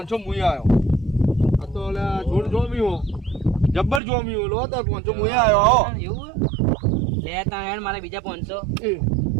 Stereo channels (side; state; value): left; drops out; at 4.0 s